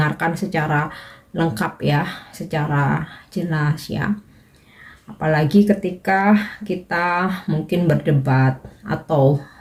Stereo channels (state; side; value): identical; both; correlation 1.00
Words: secara lengkap ya, secara jelas ya. Apalagi ketika kita mungkin berdebat atau